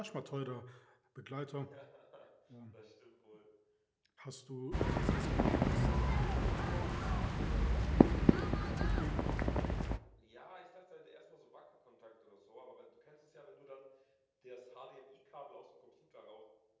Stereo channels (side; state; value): both; identical; correlation 1.00